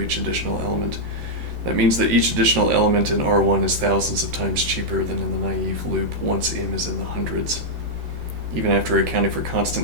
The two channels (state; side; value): late; left; 13 ms